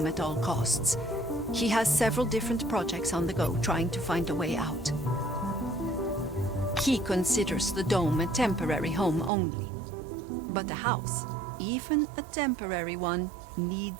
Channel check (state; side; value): drops out; left; at 9.3 s